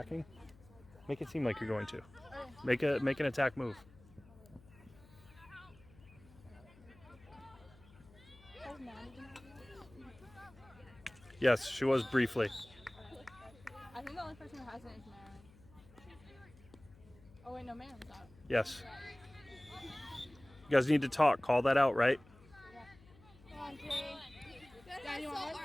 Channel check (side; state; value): left; noise; hum, 23 dB below the sound